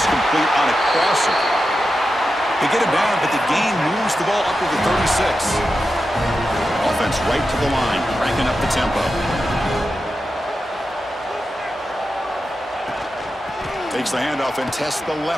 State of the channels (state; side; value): normal; both; correlation 0.90